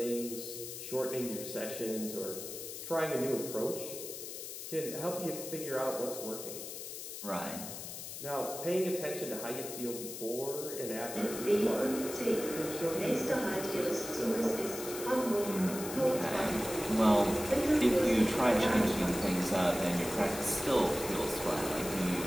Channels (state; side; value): noise; left; hiss, 9 dB below the sound